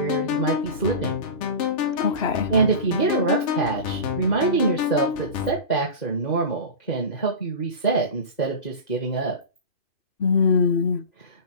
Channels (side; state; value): right; late; 2.6 ms